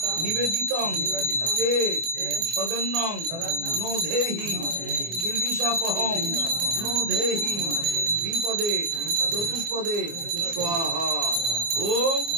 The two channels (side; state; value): left; late; 24 ms